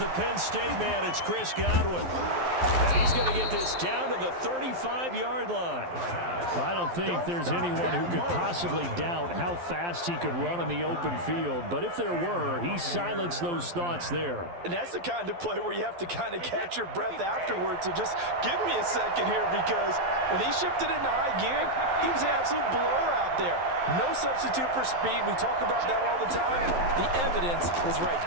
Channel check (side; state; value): left; late; 12 ms